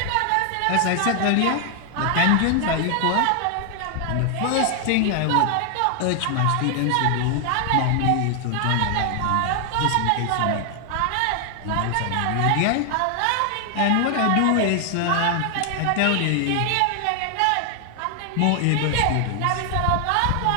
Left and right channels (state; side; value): different; both; correlation 0.00